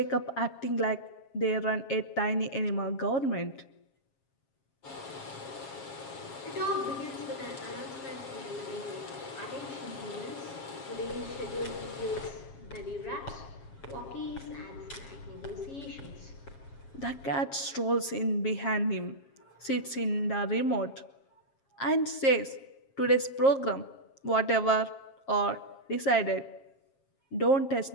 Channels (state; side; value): late; right; 7.4 ms